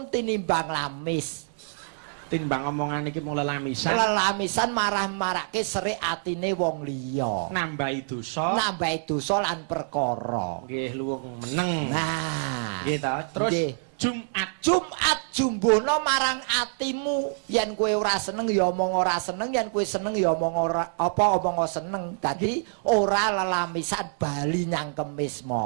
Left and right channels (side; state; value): left; silent; digital silence